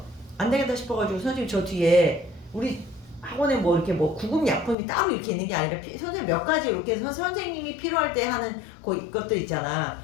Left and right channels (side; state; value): right; drops out; at 4.8 s